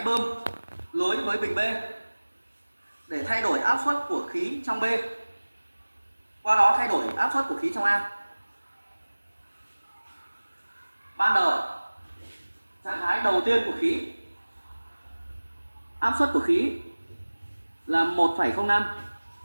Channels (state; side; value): inverted; both; correlation -1.00